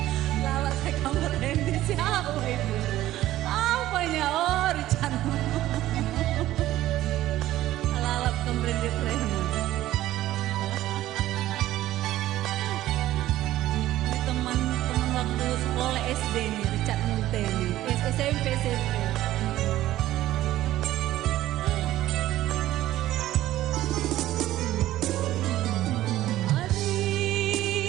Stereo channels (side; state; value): left; quieter; 14.7 dB